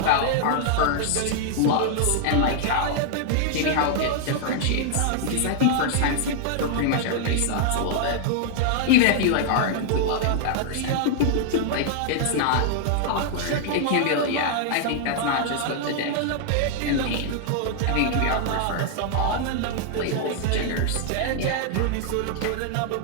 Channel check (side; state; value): both; different; correlation 0.00